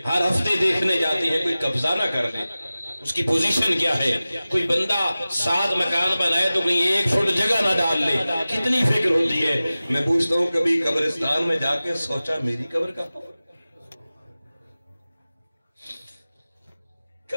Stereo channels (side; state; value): both; inverted; correlation -0.96